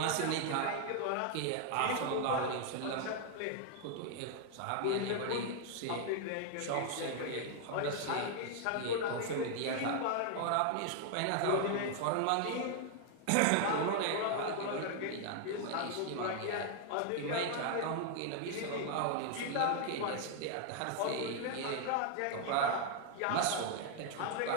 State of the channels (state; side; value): different; both; correlation 0.00